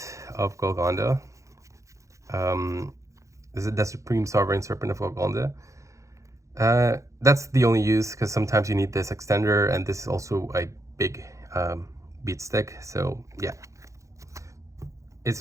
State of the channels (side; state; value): left; late; 0.15 ms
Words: of Golgonda. This is the Supreme Sovereign Serpent of Golgonda. That's the only use, because sometimes you need this extender, and this is also a big beat stick. So yeah, it's